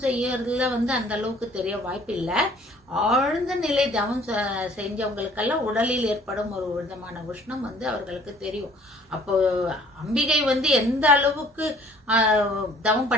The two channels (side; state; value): both; normal; correlation 0.55